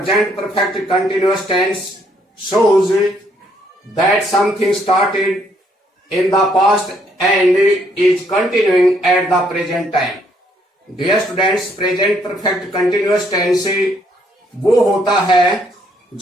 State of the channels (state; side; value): normal; both; correlation 0.69